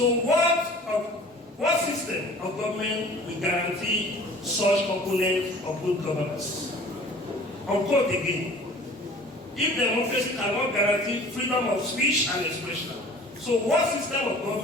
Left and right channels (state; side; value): normal; both; correlation 0.46